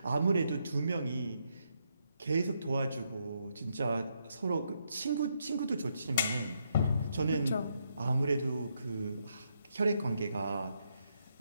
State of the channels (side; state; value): both; inverted; correlation -0.79